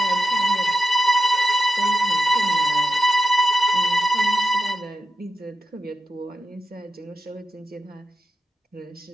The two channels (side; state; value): both; normal; correlation 0.89